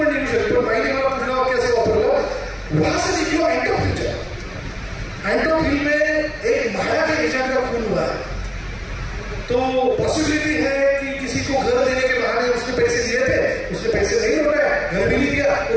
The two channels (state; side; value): identical; both; correlation 1.00